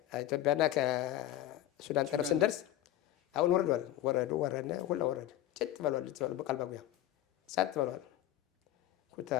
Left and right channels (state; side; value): quieter; right; 13.2 dB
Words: ኢትዮጵያና ከሱዳን ጠረፍ ስንደርስ አሁን ወረድነ ሁላ ወረደ። ጭጥ በሏል በቃል ባጉያ ጸጥ በሏል።